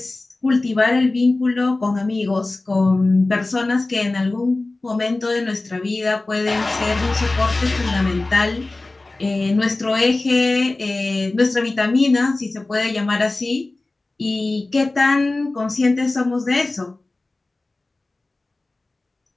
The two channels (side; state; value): right; quieter; 3.1 dB